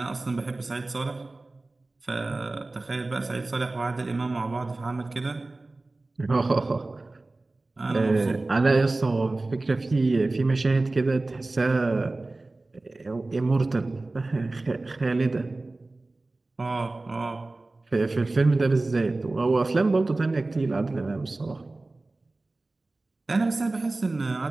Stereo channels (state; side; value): quieter; left; 3.1 dB